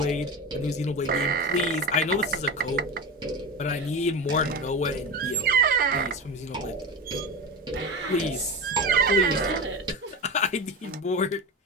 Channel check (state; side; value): normal; both; correlation 0.25